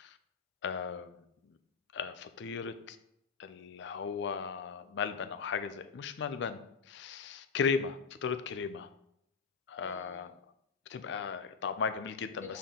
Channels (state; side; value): quieter; right; 5.6 dB